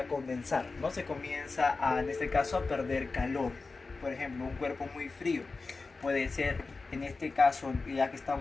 condensar, ¿no? Se comienza en este caso a perder calor. Por ejemplo, un cuerpo muy frío puede ser, en este caso, ya que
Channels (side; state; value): right; quieter; 4.0 dB